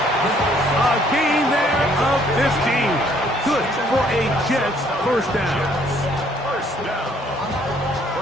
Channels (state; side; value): normal; both; correlation 0.63